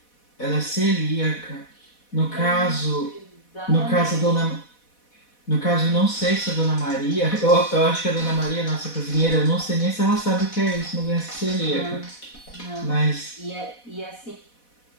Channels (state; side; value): late; right; 4.1 ms